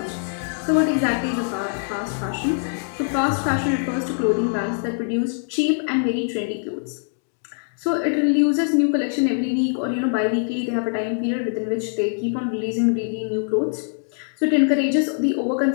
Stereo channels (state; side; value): silent; right; digital silence